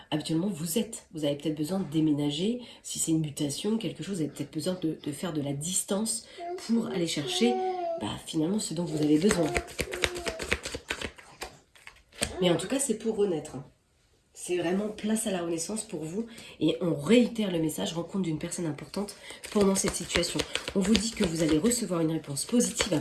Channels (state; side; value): identical; both; correlation 1.00